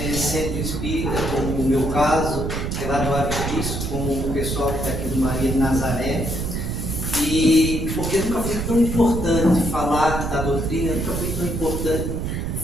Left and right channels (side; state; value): right; noise; rumble, 2 dB below the sound